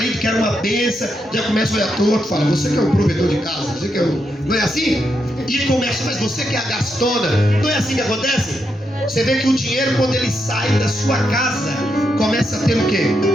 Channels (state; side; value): normal; both; correlation 0.82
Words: que era uma bênção, já começa a olhar torto, fala, você que é o provedor de casa, você que é o... Não é assim? E começa, mas você que é a gastona. Não é assim que acontece? Você vê que o dinheiro, quando ele sai da sua casa, começa a ter o quê?